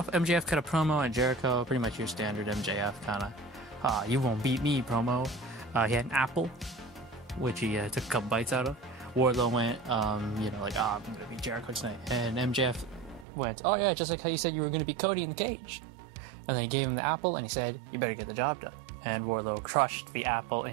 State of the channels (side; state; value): left; drops out; at 13.2 s